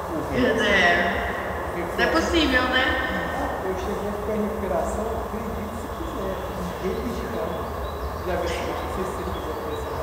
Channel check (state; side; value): identical; both; correlation 1.00